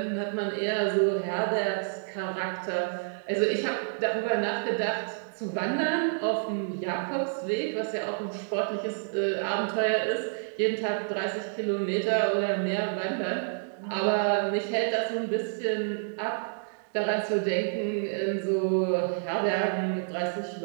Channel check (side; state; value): left; silent; digital silence